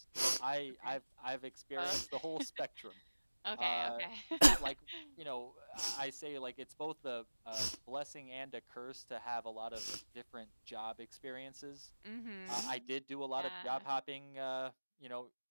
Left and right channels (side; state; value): both; inverted; correlation -1.00